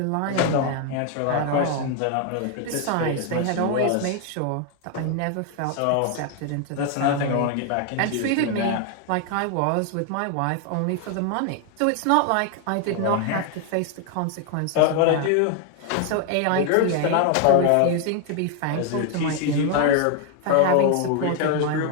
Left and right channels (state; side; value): different; both; correlation 0.00